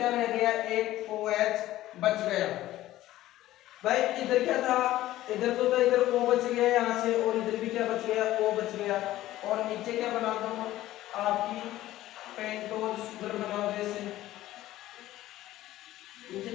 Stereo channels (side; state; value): right; quieter; 15.0 dB